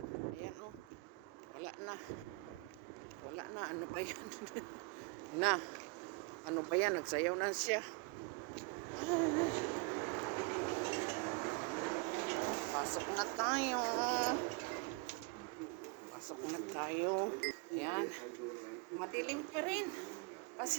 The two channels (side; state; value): left; quieter; 29.5 dB